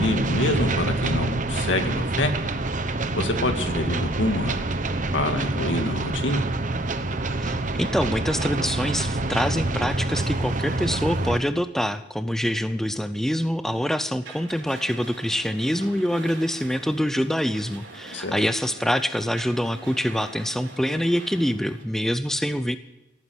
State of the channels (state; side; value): normal; both; correlation 0.73